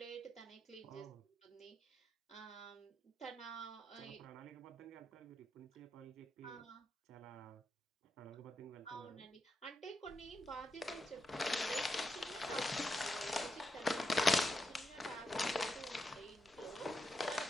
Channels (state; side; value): normal; both; correlation 0.85